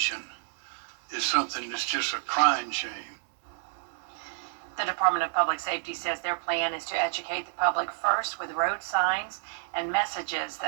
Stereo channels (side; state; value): left; silent; 58 dB below the other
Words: is something that's just a crying shame. The Department of Public Safety says their plan is to educate the public first with road signs and messages